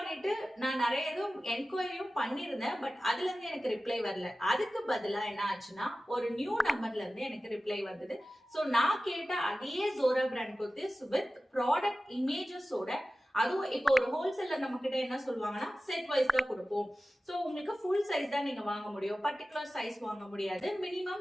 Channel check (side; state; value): both; normal; correlation 0.95